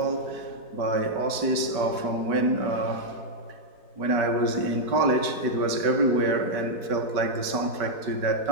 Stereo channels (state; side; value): late; left; 4.7 ms